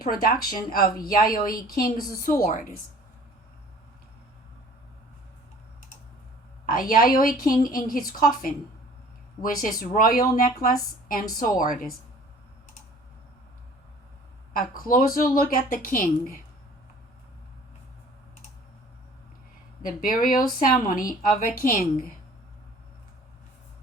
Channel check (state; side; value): normal; both; correlation 0.50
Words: of Yayoi King's swords. A Yayoi King in his coffin, with his royal necklace and swords. A closer look at the king. The burial ceremony of a king.